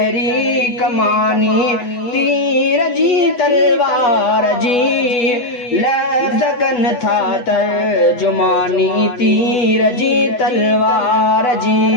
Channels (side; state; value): right; late; 8.1 ms